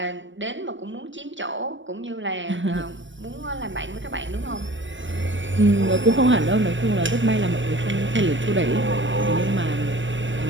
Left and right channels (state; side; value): late; left; 0.55 ms